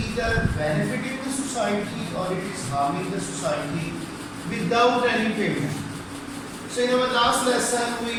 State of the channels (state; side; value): identical; both; correlation 1.00